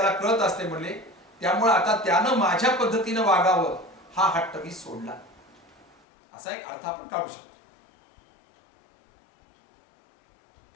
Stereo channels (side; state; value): right; drops out; at 6.0 s